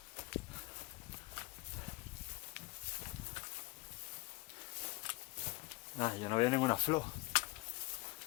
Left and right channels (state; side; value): quieter; right; 22.9 dB